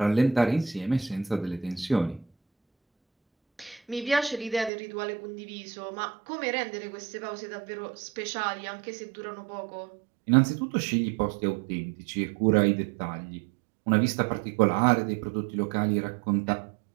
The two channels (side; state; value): left; drops out; at 4.7 s